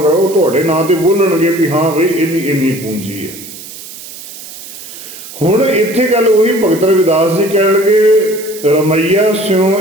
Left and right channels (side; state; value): right; noise; hiss, 14 dB below the sound